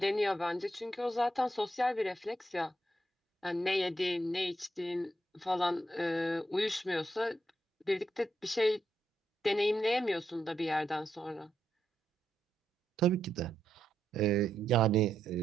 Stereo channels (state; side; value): normal; both; correlation 0.81